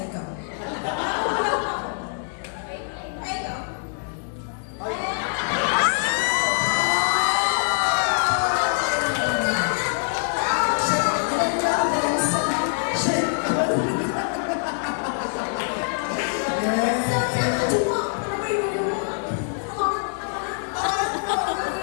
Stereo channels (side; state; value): right; silent; 58 dB below the other